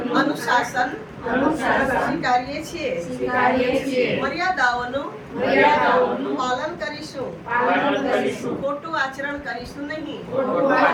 અનુશાસન સ્વીકારીએ છીએ. મર્યાદાઓનું પાલન કરીશું. ખોટું આચરણ કરીશું નહીં.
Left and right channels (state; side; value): identical; both; correlation 1.00